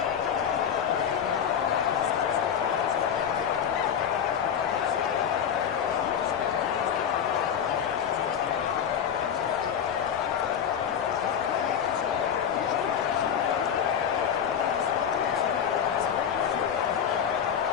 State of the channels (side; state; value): right; quieter; 8.3 dB